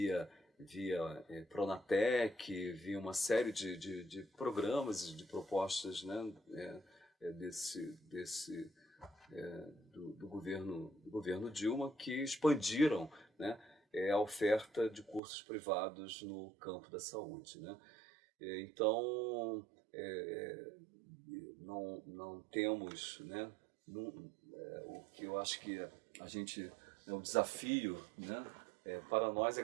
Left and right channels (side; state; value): left; drops out; at 15.2 s